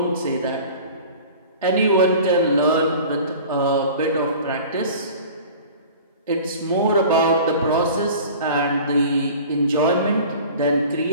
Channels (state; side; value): inverted; both; correlation -0.42